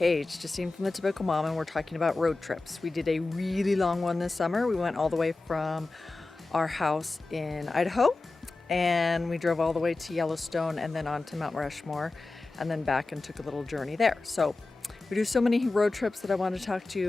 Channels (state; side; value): quieter; right; 3.4 dB